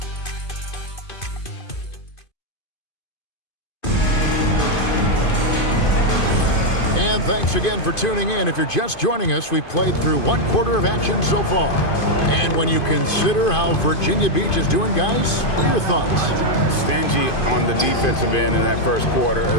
And thanks again for tuning in. If you're just joining us, we've played through 1 quarter of action so far. And when you consider how Virginia Beach is doing, guys, what are your thoughts? Stingy on the defensive end in that first quarter.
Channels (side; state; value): right; late; 2.5 ms